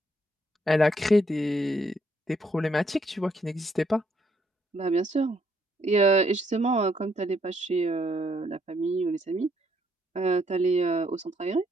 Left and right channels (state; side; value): normal; both; correlation 0.72